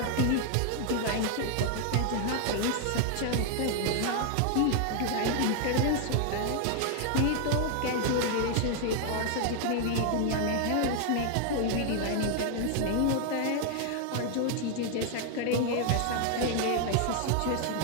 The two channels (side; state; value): both; different; correlation 0.00